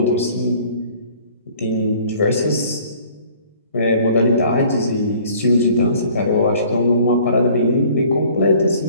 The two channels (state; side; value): inverted; both; correlation -0.54